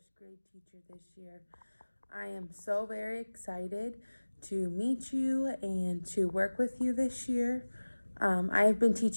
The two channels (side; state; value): both; inverted; correlation -1.00